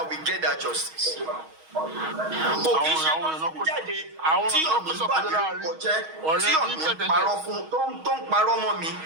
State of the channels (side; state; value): left; late; 6.3 ms